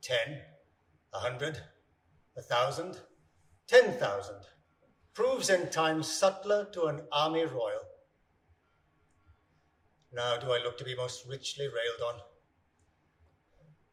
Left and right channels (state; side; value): identical; both; correlation 1.00